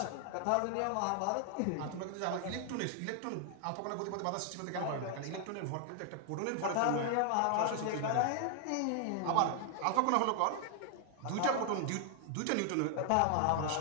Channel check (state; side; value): different; both; correlation 0.00